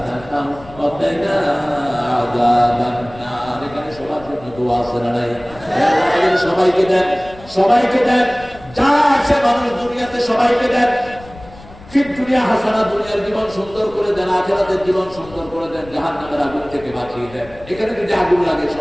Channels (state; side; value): noise; left; rumble, 20 dB below the sound